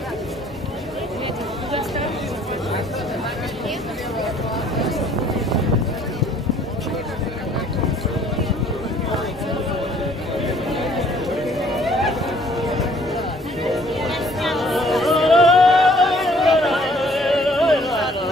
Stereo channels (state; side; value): normal; both; correlation 0.59